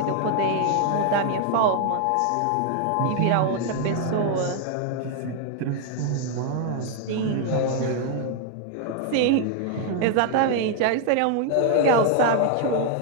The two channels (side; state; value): both; different; correlation 0.00